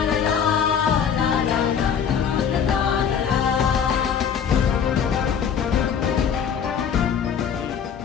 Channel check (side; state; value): right; quieter; 7.6 dB